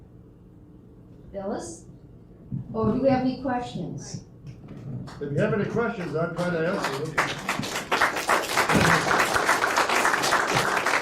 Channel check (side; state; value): both; identical; correlation 1.00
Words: Phyllis? Oh, do we have any questions? If you have any questions, I'll try to answer them.